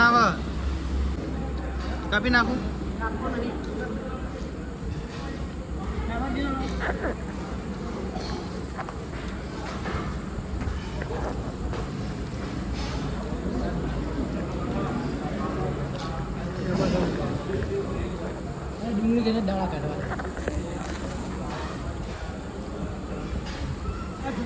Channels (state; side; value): identical; both; correlation 1.00